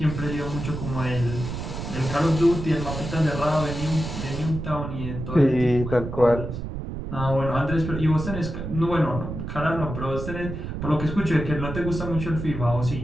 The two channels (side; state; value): right; noise; rumble, 6 dB below the sound